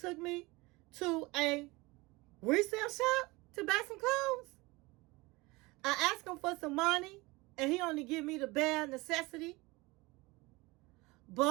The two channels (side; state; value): left; quieter; 23.1 dB